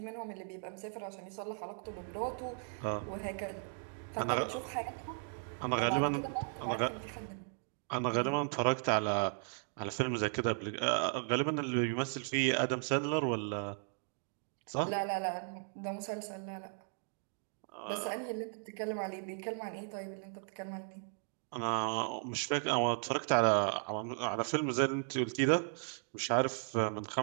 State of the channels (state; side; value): silent; left; 54 dB below the other